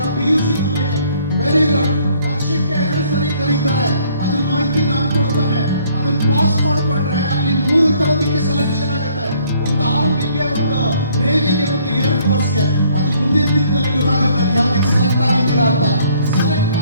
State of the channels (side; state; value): both; inverted; correlation -0.62